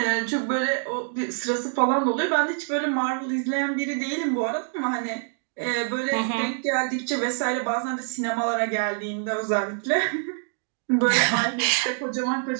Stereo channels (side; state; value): left; silent; 56 dB below the other